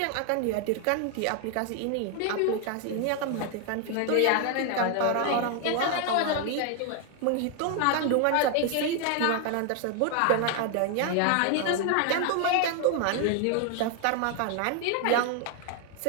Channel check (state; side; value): different; both; correlation 0.00